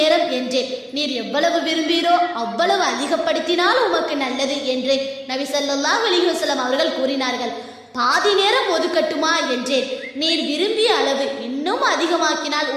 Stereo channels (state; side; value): identical; both; correlation 1.00